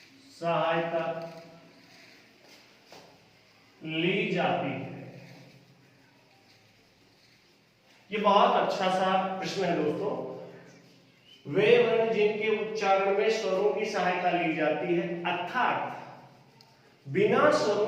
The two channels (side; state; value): both; identical; correlation 1.00